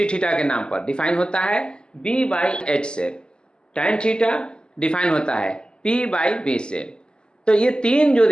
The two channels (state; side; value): late; right; 0.048 ms